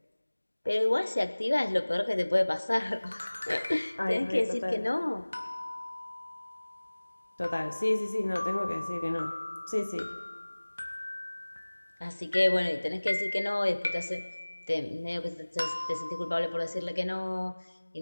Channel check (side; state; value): both; inverted; correlation -1.00